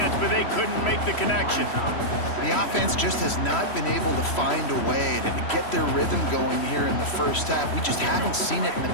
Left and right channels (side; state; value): right; late; 3.1 ms